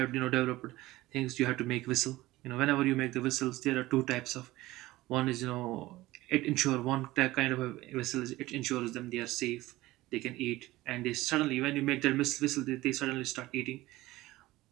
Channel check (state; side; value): quieter; left; 18.1 dB